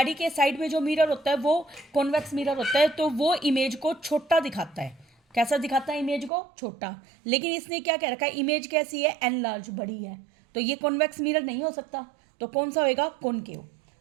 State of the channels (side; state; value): left; drops out; at 6.3 s